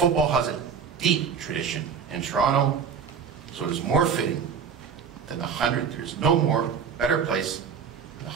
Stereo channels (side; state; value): left; quieter; 6.7 dB